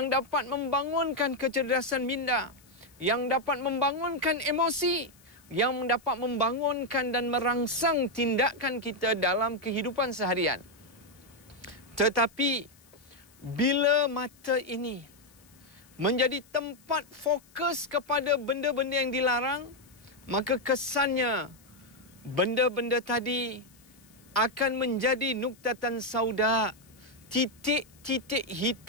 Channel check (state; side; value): noise; left; hiss, 28 dB below the sound